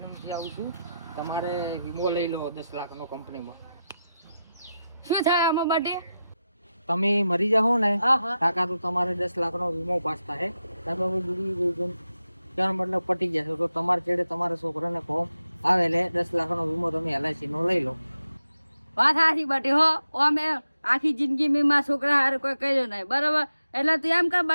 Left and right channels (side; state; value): both; inverted; correlation -0.89